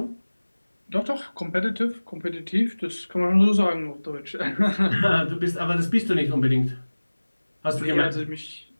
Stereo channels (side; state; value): both; inverted; correlation -1.00